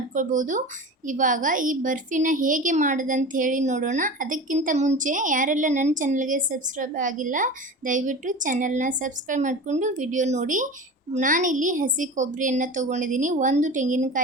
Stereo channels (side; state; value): both; normal; correlation 0.32